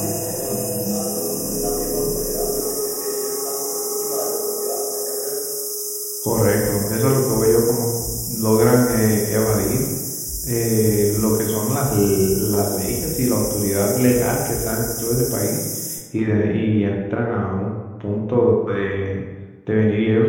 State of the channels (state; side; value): identical; both; correlation 1.00